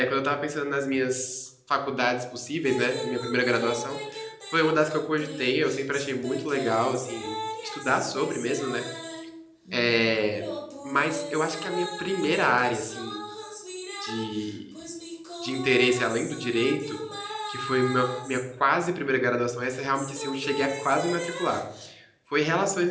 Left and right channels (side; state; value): both; identical; correlation 1.00